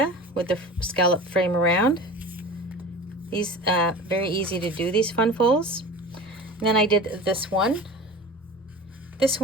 with the scallop frame around. These very easy to do, these fun folds. And then I did this one. This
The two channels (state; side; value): normal; both; correlation 0.36